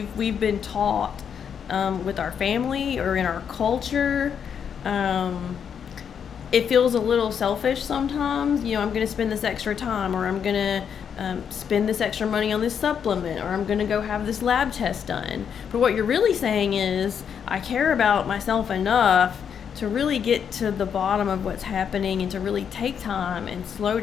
we've been taught with our family or in our culture. It feels a little selfish sometimes. I'm going to spend this extra time, or I'm going to spend this extra money on this supplement, or I'm going to go have this lab test done. But what you're really saying is, I care about myself enough to really get to the bottom of what's happening and to really take time and slow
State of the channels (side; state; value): right; quieter; 7.6 dB